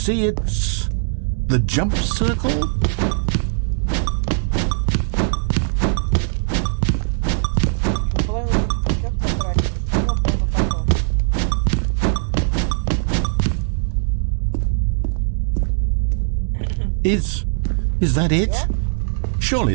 It's the jump circle. Is that it? Surely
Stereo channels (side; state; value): left; silent; digital silence